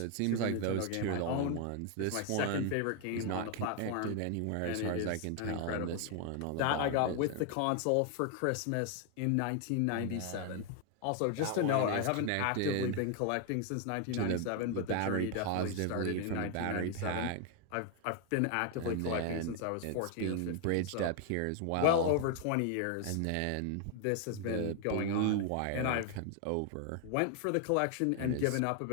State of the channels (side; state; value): both; different; correlation 0.00